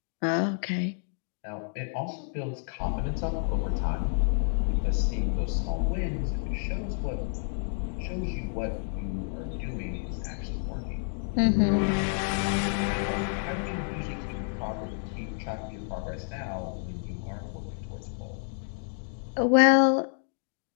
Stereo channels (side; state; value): right; silent; 58 dB below the other